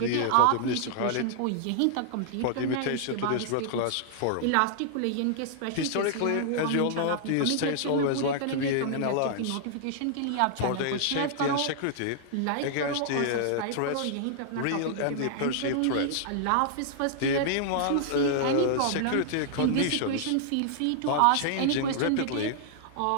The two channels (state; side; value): different; both; correlation -0.01